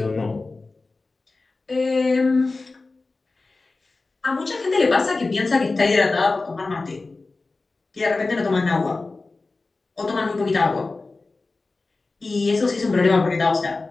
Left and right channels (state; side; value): quieter; right; 3.6 dB